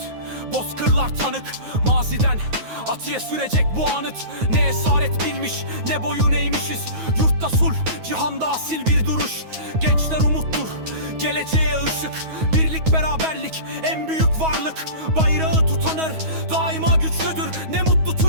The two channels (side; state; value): left; late; 9.4 ms